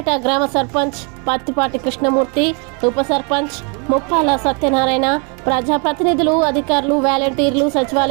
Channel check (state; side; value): quieter; left; 35.5 dB